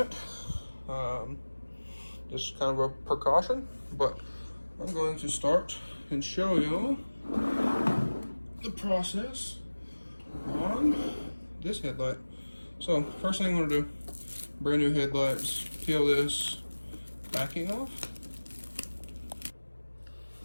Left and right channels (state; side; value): inverted; both; correlation -1.00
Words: Just kind of a precaution, but I'm going to start and show you the process on this headlight. So first thing I'm going to do, brand new headlights, peel this backing off.